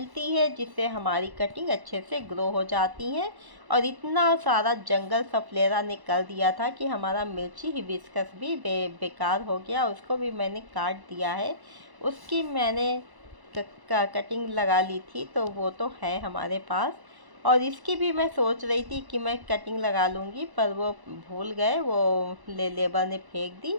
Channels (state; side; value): late; left; 1.1 ms